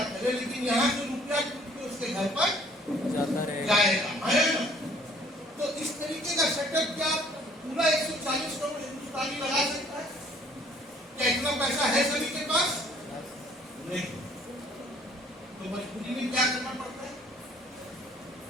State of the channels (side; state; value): both; normal; correlation 0.58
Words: करे, लेकिन यहाँ से रुपया टूट के उसके घर पर जाता रहेगा। जाएगा, आया ना? तो इस तरीके का सेटअप क्या पूरा 140 करोड़ हिंदुस्तानी लगा सकता है? क्या इतना पैसा है सभी के पास? नहीं। तो मजबूरी में क्या करना पड़ता है?